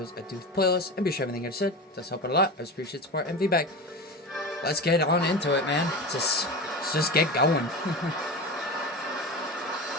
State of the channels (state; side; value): normal; both; correlation 0.27